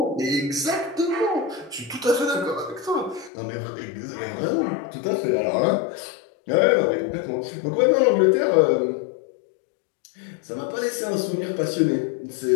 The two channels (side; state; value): right; drops out; at 3.3 s